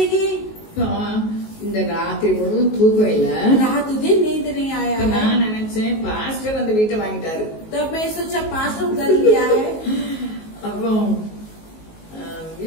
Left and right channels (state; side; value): late; right; 19 ms